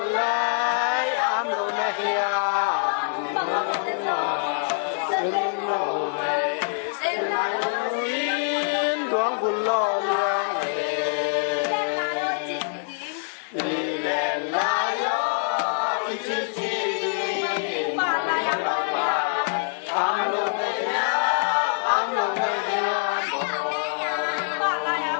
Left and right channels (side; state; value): right; silent; 62 dB below the other